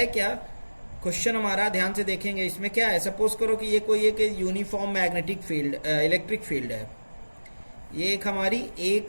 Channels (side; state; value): both; inverted; correlation -1.00